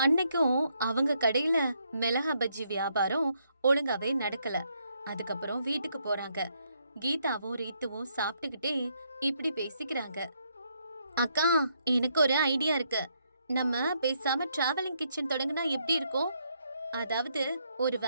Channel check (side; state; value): both; inverted; correlation -0.74